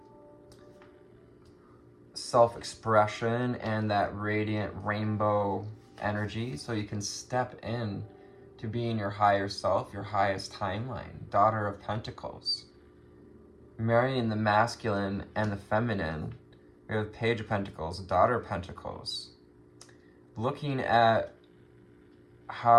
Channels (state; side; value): identical; both; correlation 1.00